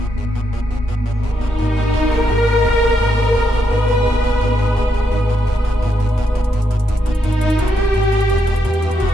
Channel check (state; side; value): normal; both; correlation 0.80